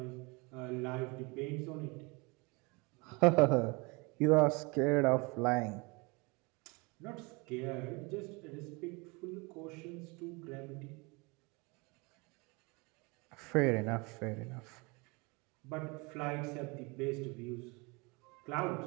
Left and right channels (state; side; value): quieter; left; 27.7 dB